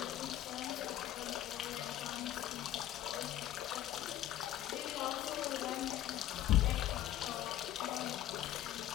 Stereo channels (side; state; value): right; quieter; 12.6 dB